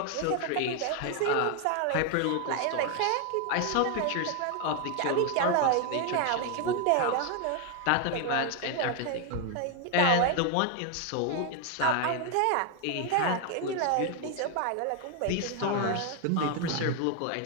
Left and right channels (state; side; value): different; both; correlation 0.01